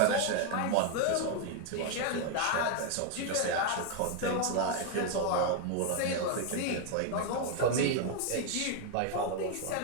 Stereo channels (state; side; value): different; both; correlation 0.01